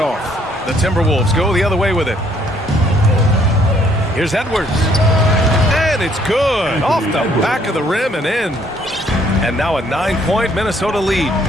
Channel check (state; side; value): normal; both; correlation 0.65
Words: The Timberwolves go the other way with it. Here's Edwards. And it's good. Off the back of the rim and in. And now a 9-point Minnesota lead.